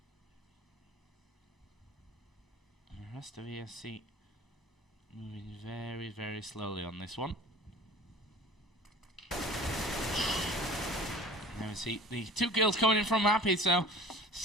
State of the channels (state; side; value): normal; both; correlation 0.42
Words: And the rest of ESC moving very, very slowly on this one. Now we see the 2 kills coming in from Happy, so